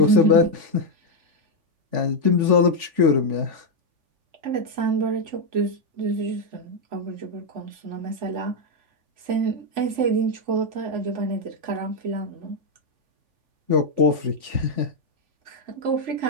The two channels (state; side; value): late; left; 3.5 ms